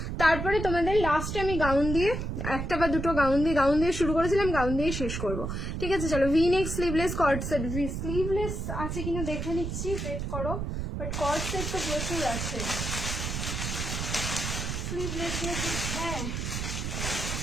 তারপরে তোমাদের লাস্টে আমি গাউন দিয়ে, একটা বা দুটো গাউন দিয়ে শুরু করেছিলাম, গাউন দিয়ে শেষ করব। ঠিক আছে চলো, V neck sleeveless cord set, sleeveless আছে কিনা দেখে নিচ্ছি, ওয়েট করো, বাট কর্ড সেট তো প্রচুর আছে। স্লিভলেস হ্যাঁ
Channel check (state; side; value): noise; right; rumble, 3 dB below the sound